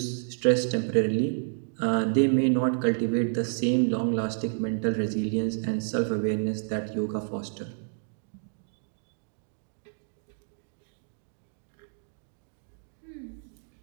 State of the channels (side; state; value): left; silent; digital silence